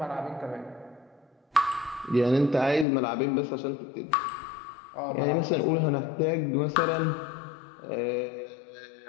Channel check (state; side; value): drops out; right; at 2.9 s